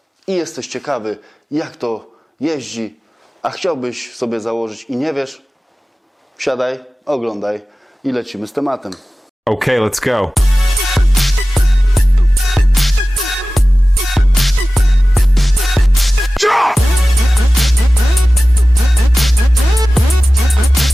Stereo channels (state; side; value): normal; both; correlation 0.96